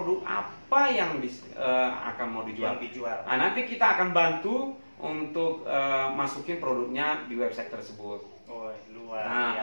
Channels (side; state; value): both; inverted; correlation -1.00